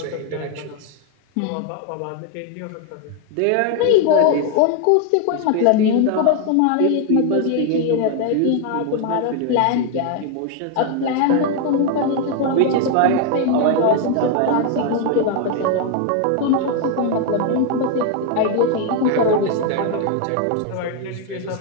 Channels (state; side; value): different; both; correlation 0.01